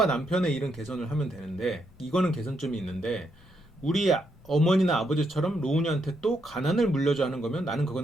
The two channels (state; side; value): normal; both; correlation 0.78